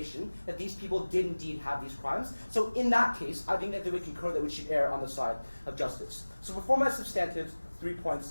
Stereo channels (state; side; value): inverted; both; correlation -1.00